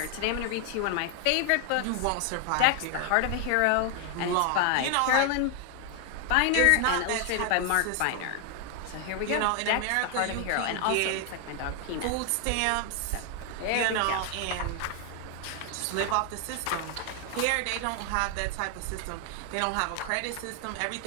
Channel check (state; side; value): different; both; correlation 0.00